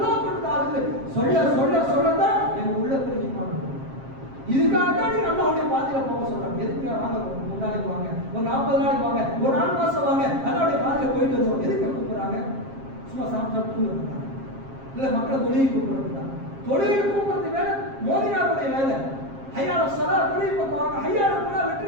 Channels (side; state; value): left; late; 7.5 ms